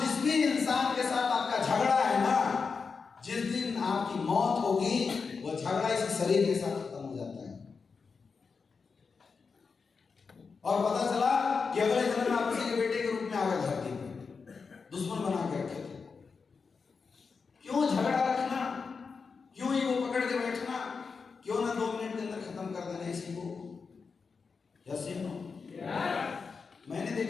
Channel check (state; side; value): quieter; right; 5.1 dB